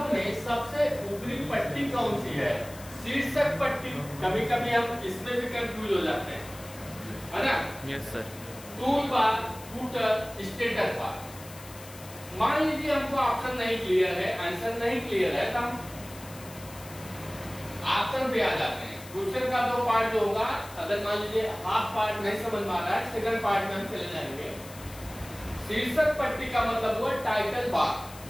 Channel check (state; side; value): noise; left; hiss, 17 dB below the sound